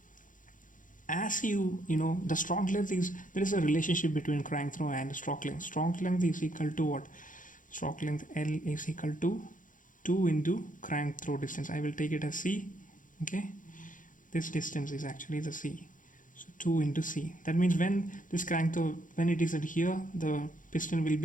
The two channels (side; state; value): right; late; 0.38 ms